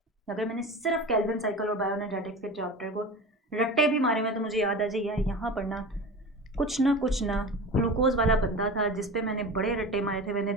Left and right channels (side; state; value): both; normal; correlation 0.32